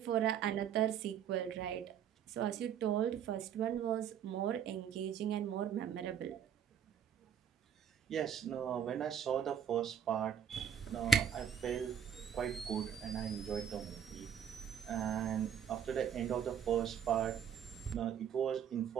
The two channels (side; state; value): left; quieter; 8.2 dB